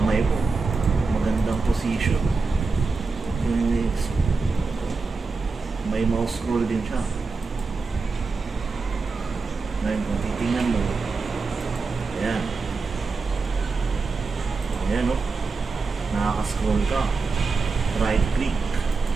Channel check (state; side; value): quieter; left; 4.3 dB